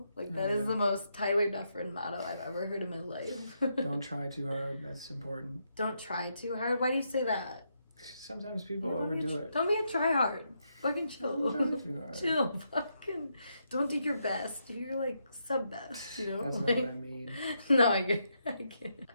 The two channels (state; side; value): inverted; both; correlation -0.80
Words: Like that is the most Tyler Dufresne motto I've ever heard in my life. Don't try too hard. That's important. Don't try too hard. Why do you say that? Sometimes people overdo it. Don't be a try hard. Fucking chill. Don't try too hard. Chill. Fucking don't do your best. Do your like sub best. That's like, not what I mean. No, I get.